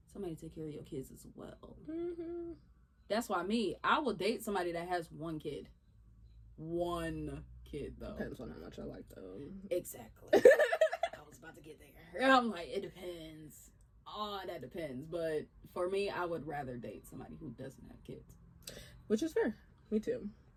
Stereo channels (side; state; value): both; identical; correlation 1.00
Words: somebody to take care of your kids as well. Mm-hmm. That's why I will date somebody that has 1 kid. 1 kid, though. Depends on how much I like them. Exactly. I was about to get there. I'm like, it depends. Oh, that depends. But for me, I would rather date somebody who doesn't have kids. Which is fair. Me too.